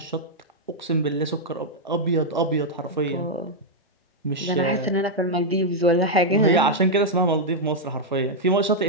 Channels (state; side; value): normal; both; correlation -0.03